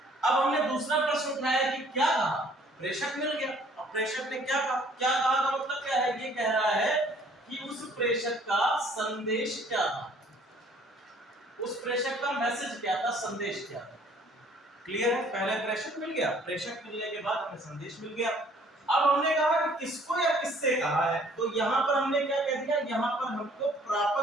अब हमने दूसरा प्रश्न उठाया कि क्या कहा, प्रेषक मिल गया। अब प्रेषक ने क्या कहा, का मतलब क्या है, ये कह रहा है कि उस प्रेषक का संदेश क्या था, उस प्रेषक का मैसेज क्या था, संदेश क्या था। क्लियर है? पहले प्रेषक मिल गया, प्रेषक मिलने के बाद हमें संदेश मिल गया। अब हमने कहा कि किसको या किससे कहा है, तो यहां पर हमने क्या कह दिया, यहां पर हमको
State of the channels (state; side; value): normal; both; correlation 0.58